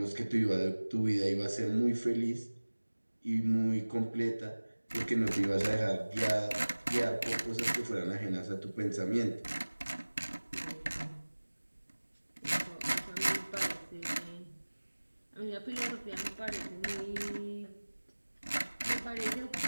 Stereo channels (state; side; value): inverted; both; correlation -1.00